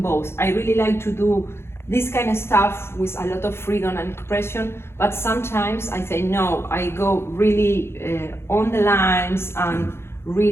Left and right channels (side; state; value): right; late; 0.12 ms